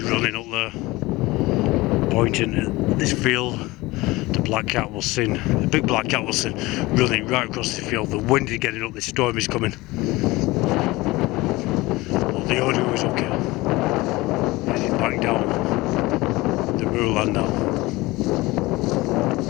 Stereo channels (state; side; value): quieter; right; 20.7 dB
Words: running up there, pointing at this field. The black cat was seen, the big black cat was seen running right across the field. The wind is getting up, the storm is coming. But the audio is okay. Heading back down the moorland now.